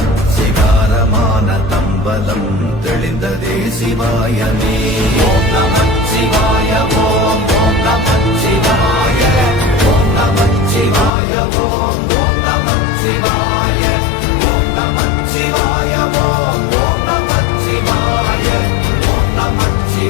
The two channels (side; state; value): right; drops out; at 11.1 s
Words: சிகாரமான தம்பலம் தெளிந்ததே சிவாயமே. ஓம் நமச்சிவாய ஓம் ஓம் நமச்சிவாய ஓம் நமச்சிவாய ஓம் ஓம் நமச்சிவாய ஓம் நமச்சிவாய ஓம் ஓம் நமச்சிவாய ஓம்